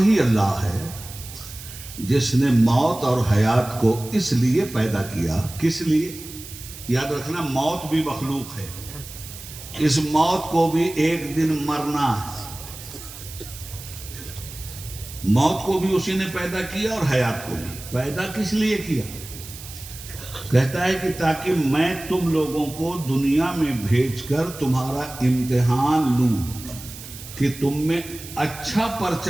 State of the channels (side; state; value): right; noise; hiss, 14 dB below the sound